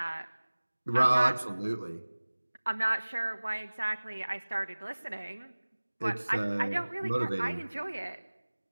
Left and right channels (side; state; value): both; inverted; correlation -1.00